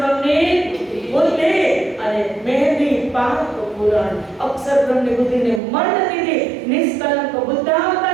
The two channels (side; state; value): left; drops out; at 5.6 s